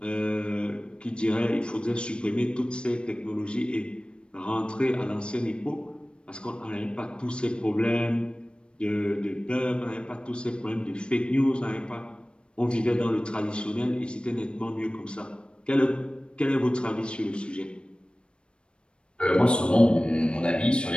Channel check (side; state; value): right; late; 0.056 ms